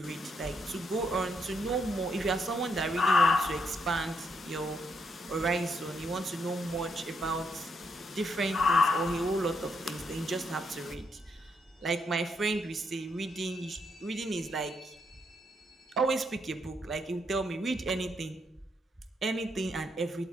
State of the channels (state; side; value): normal; both; correlation 0.77